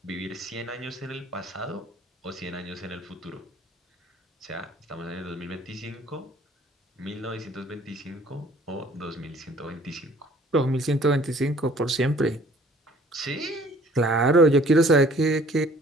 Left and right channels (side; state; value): both; normal; correlation 0.55